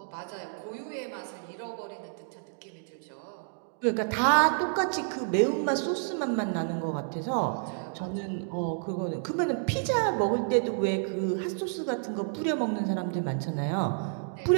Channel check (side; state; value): left; silent; digital silence